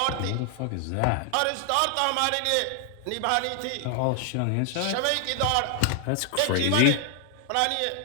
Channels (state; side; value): different; both; correlation 0.00